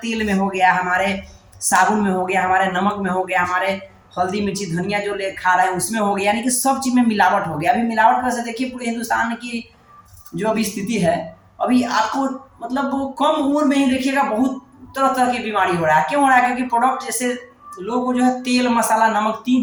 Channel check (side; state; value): both; identical; correlation 1.00